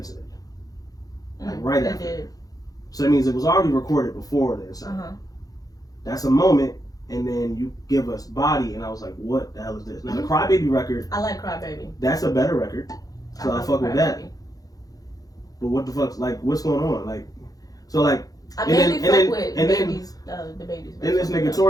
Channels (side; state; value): right; late; 0.18 ms